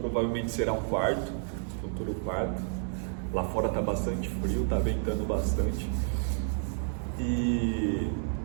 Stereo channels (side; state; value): left; silent; digital silence